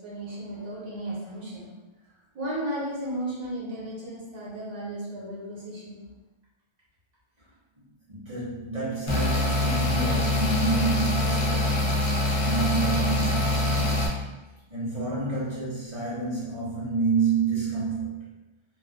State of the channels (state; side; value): late; left; 1.3 ms